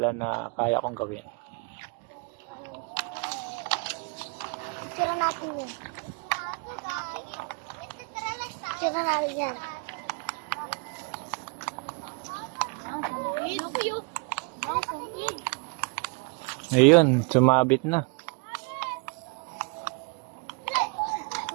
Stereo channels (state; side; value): quieter; left; 33.6 dB